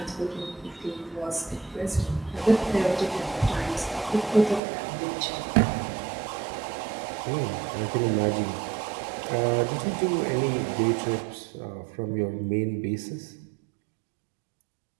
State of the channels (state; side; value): drops out; left; at 4.6 s